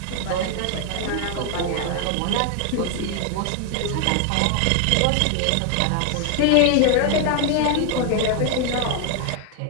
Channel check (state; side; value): different; both; correlation 0.00